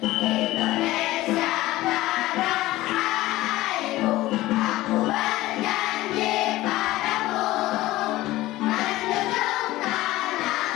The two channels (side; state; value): right; quieter; 17.2 dB